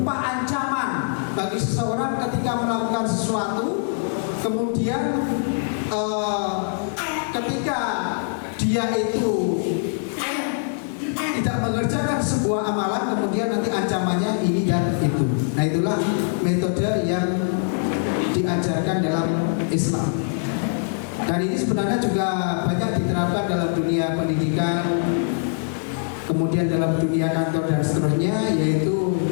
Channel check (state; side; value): silent; right; 63 dB below the other